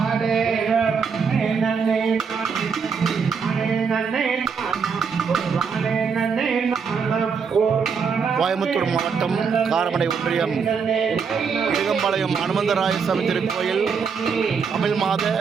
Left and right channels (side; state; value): left; quieter; 5.9 dB